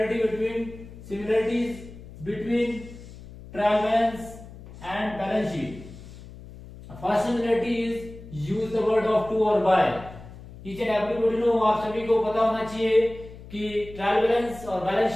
similarities between trial balance and balance sheet. First similarity is use the word of to और by. Each and everybody know, आप सभी को पता होना चाहिए कि ट्रायल बैलेंस और बैलेंस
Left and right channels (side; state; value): left; noise; hum, 16 dB below the sound